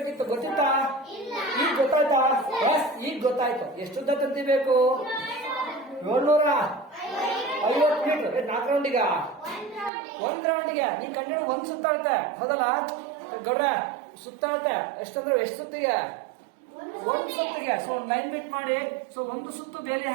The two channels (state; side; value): drops out; left; at 9.9 s